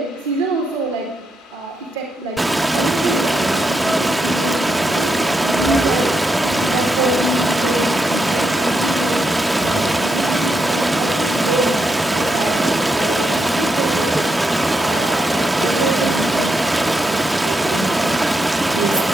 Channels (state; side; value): normal; both; correlation 0.82